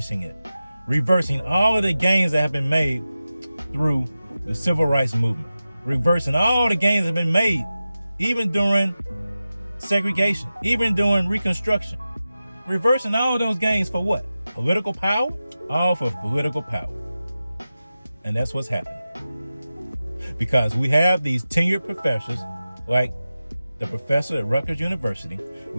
it, reversing all of the gains that have been made through the civil rights movement, reversing all the gains that have been made even during segregation, even during Reconstruction, reversing all of those gains for what? Political power? All for political power. And that's what's happening. Because we have these tenured professors, like the professor at Rutgers University.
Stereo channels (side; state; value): both; inverted; correlation -0.94